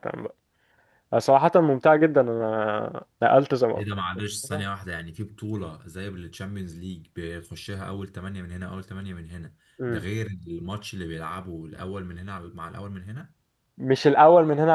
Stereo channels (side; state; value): both; identical; correlation 1.00